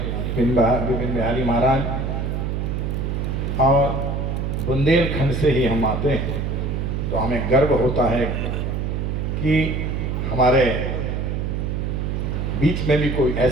विपिन बिहारी महाराज, और बुंदेलखंड से ही हम आते हैं, तो हमें गर्व होता है कि हमारे बीच में भी कोई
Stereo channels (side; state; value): right; noise; hum, 1 dB below the sound